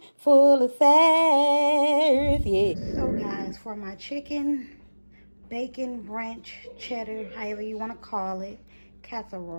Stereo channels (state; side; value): inverted; both; correlation -1.00